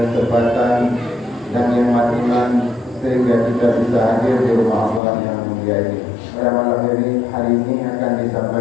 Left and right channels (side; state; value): right; drops out; at 5.0 s